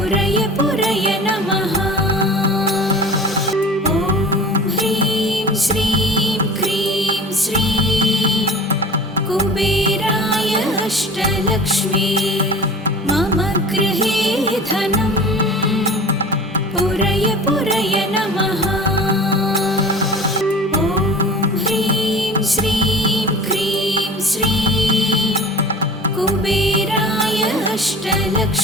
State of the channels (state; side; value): normal; both; correlation 0.39